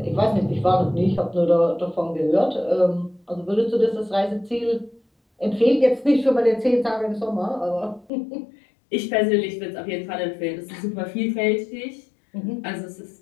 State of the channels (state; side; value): drops out; right; at 8.1 s